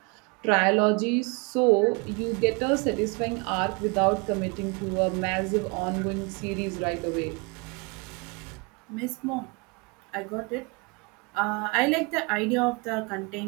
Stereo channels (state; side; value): quieter; left; 29.8 dB